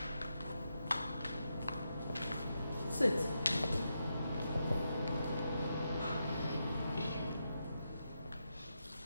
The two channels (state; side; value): inverted; both; correlation -0.85